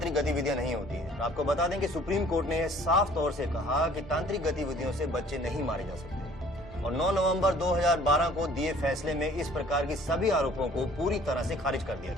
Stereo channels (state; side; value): normal; both; correlation 0.54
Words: गतिविधियां नहीं होती हैं। आपको बता दें कि सुप्रीम कोर्ट ने साफ तौर से कहा कि तांत्रिक गतिविधियों से बच्चे नहीं मारे जा सकते और 9 नवंबर 2012 को दिए फैसले में इस प्रकार की सभी आरोपों को पूरी तरह से खारिज कर दिया।